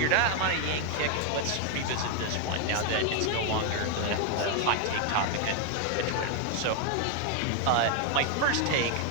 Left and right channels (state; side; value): different; both; correlation 0.00